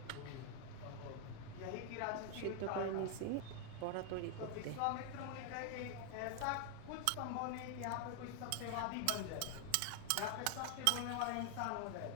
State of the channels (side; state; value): both; different; correlation 0.00